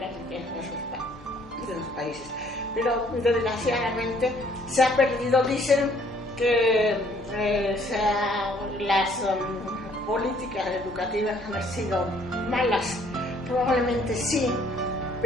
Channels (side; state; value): both; normal; correlation 0.62